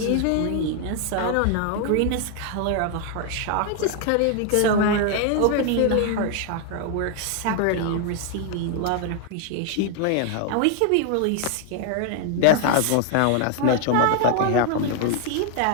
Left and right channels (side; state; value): both; different; correlation 0.00